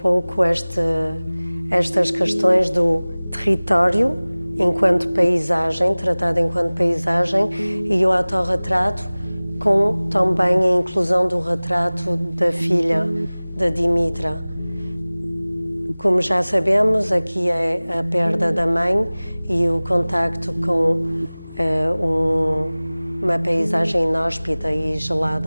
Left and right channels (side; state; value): both; inverted; correlation -0.99